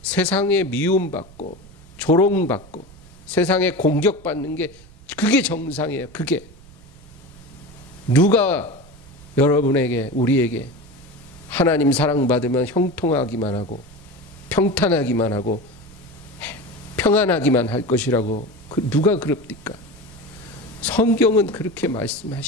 세상에 미움받고 조롱받고 세상에 공격받는 게 그게 정상이에요. 그게 누가 여러분에게 우리에게 하나님 사랑받으면 형통하기만 하고 평탄하기만 하고 평안하기만 할 것이라고 누가 그럽니까? 성경은 그렇게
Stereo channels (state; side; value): noise; right; rumble, 22 dB below the sound